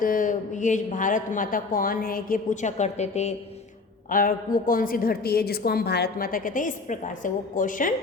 ये भारत माता कौन है ये पूछा करते थे और वो कौन सी धरती है जिसको हम भारत माता कहते हैं। इस प्रकार से वो क्वेश्चन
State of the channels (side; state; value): right; quieter; 4.0 dB